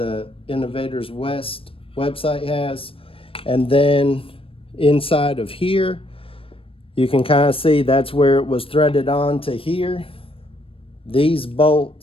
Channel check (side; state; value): right; late; 0.27 ms